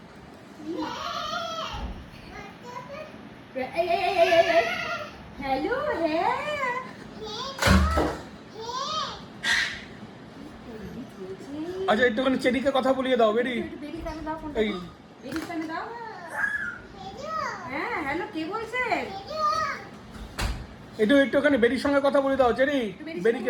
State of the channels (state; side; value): identical; both; correlation 1.00